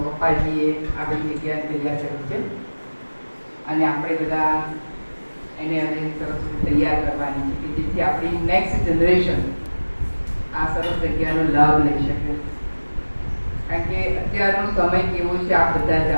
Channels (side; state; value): both; inverted; correlation -1.00